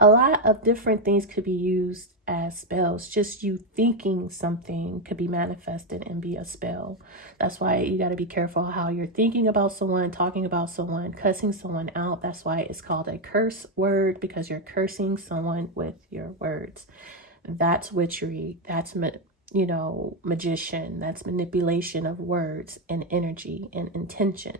lot of different things could be used as spells. Just you thinking something could be manifested and be a spell. That's why you got to be careful how you're thinking about someone, talking about someone, cussing someone out. That's why it's called a curse word, because you're cursing someone with your words. That's witchery. That's, you know, magician. That's manipulation of words and energy and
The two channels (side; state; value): both; normal; correlation 0.06